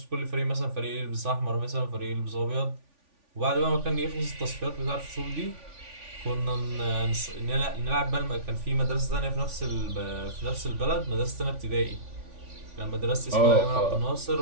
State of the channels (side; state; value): left; late; 3.5 ms